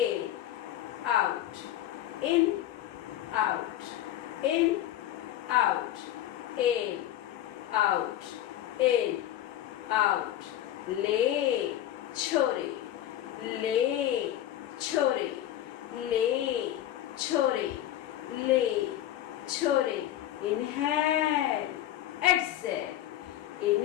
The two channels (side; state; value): right; quieter; 12.6 dB